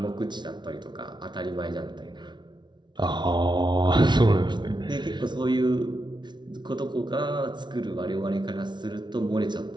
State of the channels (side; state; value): left; late; 0.21 ms